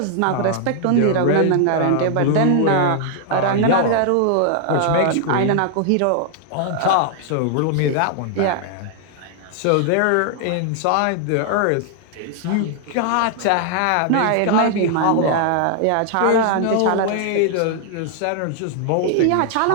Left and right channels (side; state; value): both; different; correlation 0.00